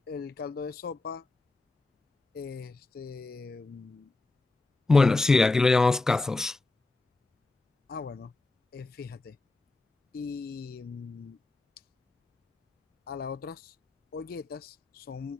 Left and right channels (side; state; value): right; quieter; 3.3 dB